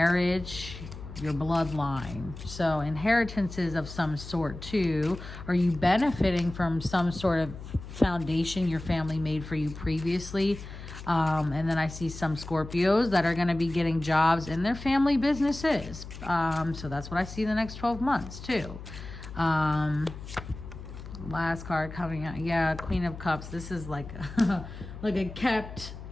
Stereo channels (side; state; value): left; noise; hum, 12 dB below the sound